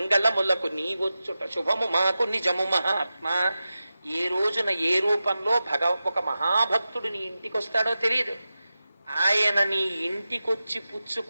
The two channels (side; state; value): both; inverted; correlation -0.93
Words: నీవొచ్చుట శుభము మాకు నిజము మహాత్మా. ఏ రోజున ఏ రూపంలో ఒక మహాభక్తుడు నీ ఇంటికి వస్తాడో తెలియదు. ఆయన నీ ఇంటికొచ్చి